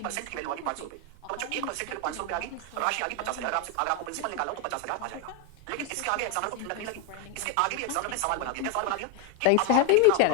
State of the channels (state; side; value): different; both; correlation 0.01